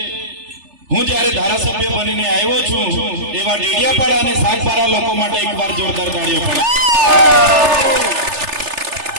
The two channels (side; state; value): left; late; 3.3 ms